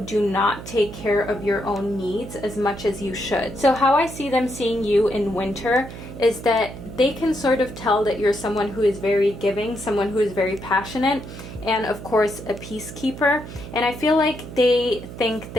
do not take care of your own needs as much as you should. So how I see them seeing you in Winter is that they can sort of tell that you're someone who is very giving, someone who is very passionate, and of course a peacekeeper. And I feel like they think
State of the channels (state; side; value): noise; right; hum, 12 dB below the sound